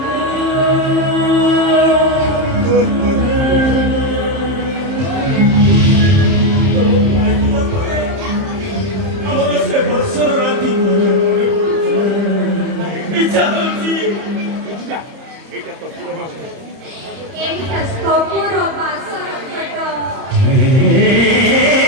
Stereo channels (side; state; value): left; late; 31 ms